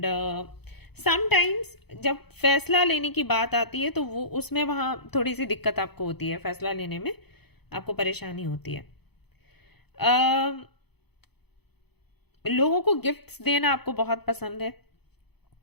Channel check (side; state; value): right; late; 0.98 ms